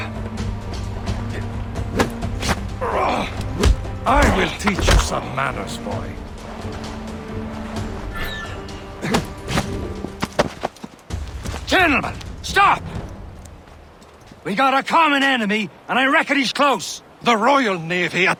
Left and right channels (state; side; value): identical; both; correlation 1.00